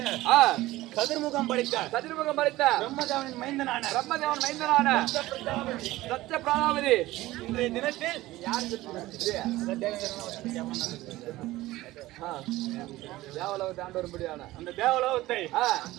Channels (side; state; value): left; quieter; 17.4 dB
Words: கதிர்முகம் படைத்த பிரம்மதேவனின் மைந்தனான சத்ய பிராணாவதி இன்றைய தினத்தில் தேவலோகத்தை ஆண்டு வரும்படியான அந்த தேவலோகத்தை